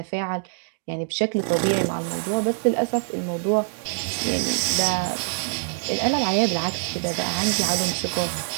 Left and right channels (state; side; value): silent; left; digital silence